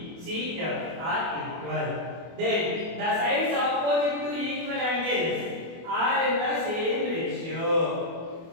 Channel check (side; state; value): left; late; 24 ms